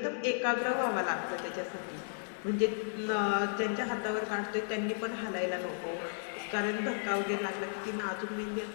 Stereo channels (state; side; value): silent; right; 55 dB below the other